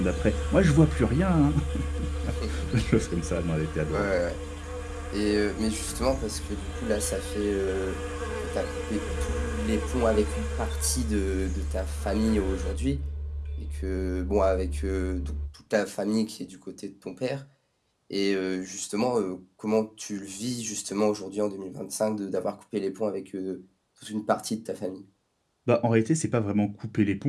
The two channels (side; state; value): both; identical; correlation 1.00